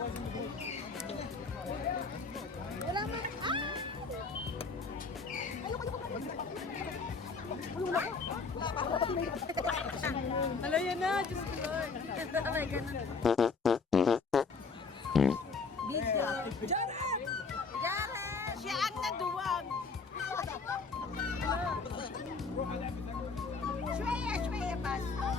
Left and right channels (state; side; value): quieter; right; 4.6 dB